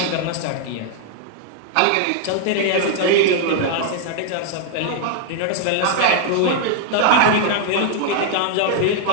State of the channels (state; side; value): different; both; correlation 0.00